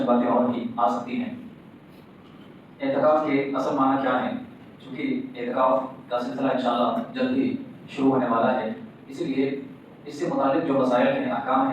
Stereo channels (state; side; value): identical; both; correlation 1.00